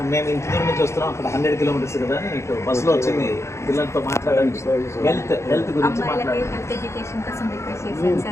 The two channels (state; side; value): late; right; 0.14 ms